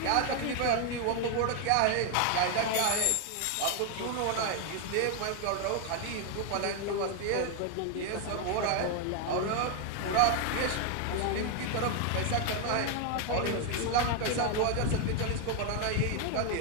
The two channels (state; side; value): different; both; correlation 0.01